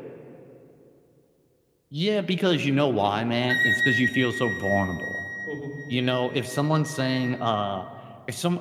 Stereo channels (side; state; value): both; identical; correlation 1.00